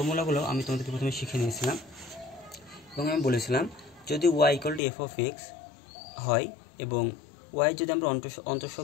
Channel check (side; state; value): right; drops out; at 4.8 s